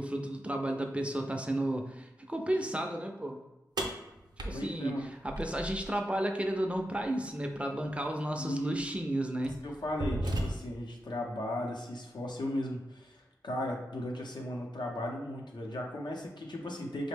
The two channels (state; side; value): normal; both; correlation 0.86